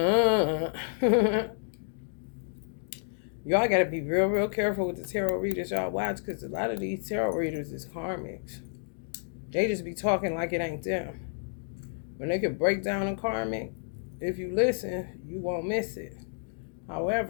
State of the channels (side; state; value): right; silent; digital silence